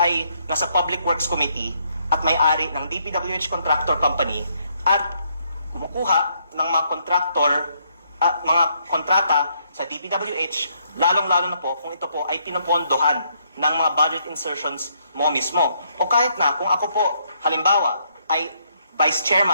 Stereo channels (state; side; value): inverted; both; correlation -0.72